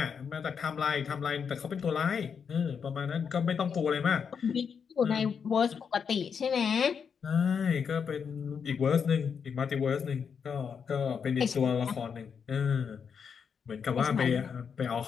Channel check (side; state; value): right; quieter; 6.6 dB